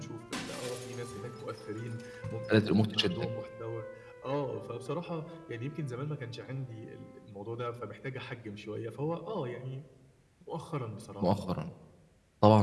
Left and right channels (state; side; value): identical; both; correlation 1.00